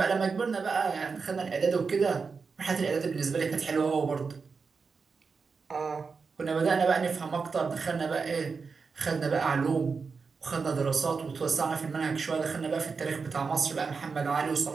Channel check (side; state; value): left; quieter; 5.0 dB